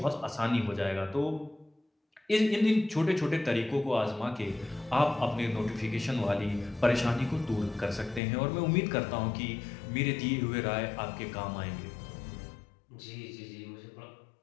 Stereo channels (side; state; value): right; drops out; at 8.2 s